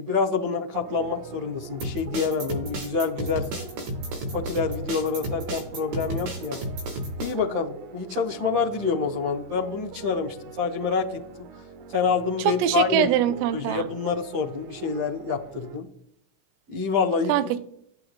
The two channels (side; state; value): left; late; 16 ms